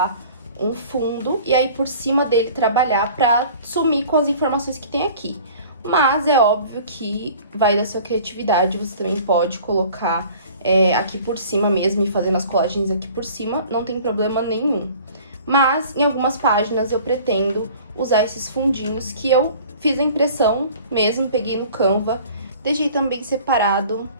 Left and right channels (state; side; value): inverted; both; correlation -0.47